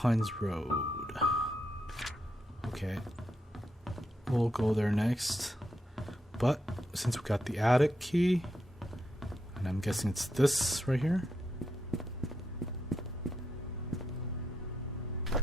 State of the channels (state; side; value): normal; both; correlation 0.83